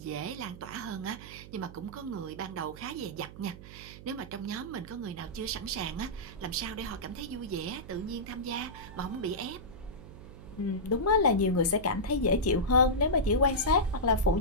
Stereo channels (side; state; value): right; noise; hum, 15 dB below the sound